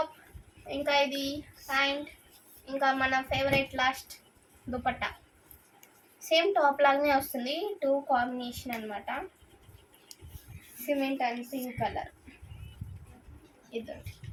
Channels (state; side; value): identical; both; correlation 1.00